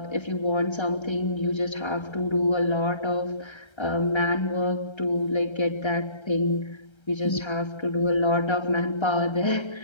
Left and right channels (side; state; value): right; late; 1.3 ms